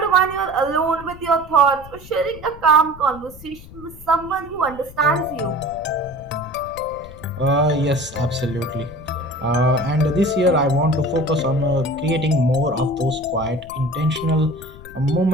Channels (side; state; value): left; noise; rumble, 18 dB below the sound